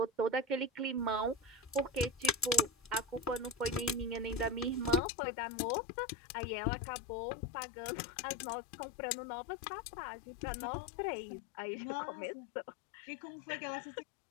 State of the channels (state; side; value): drops out; right; at 5.0 s